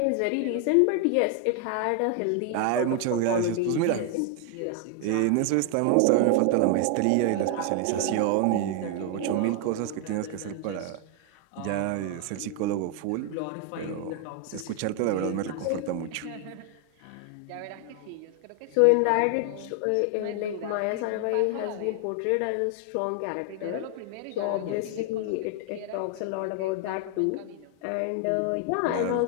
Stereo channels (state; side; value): different; both; correlation 0.00